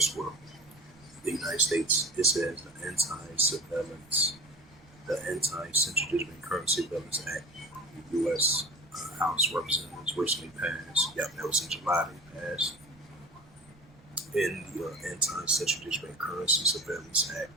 The United States, it says the Anti-Central Digital Currency Surveillance Act, the U.S. House of Representatives recently passed. Yep, that was in July they passed. In the Anti-Central Digital Currency Surveillance Act,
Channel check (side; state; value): right; noise; rumble, 27 dB below the sound